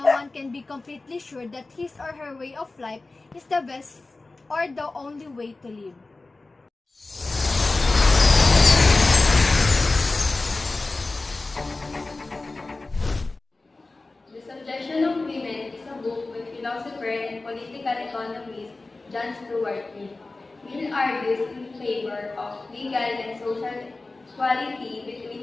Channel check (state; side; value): quieter; right; 3.3 dB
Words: one can be completely sure that his or her way of life is the best or the only way to live. The Subjection of Women is a book by philosopher and political economist John Stuart Mill. Mill argues in favor of legal and social equality